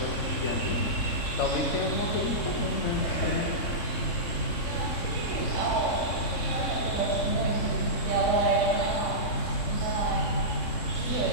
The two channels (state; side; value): late; right; 3.6 ms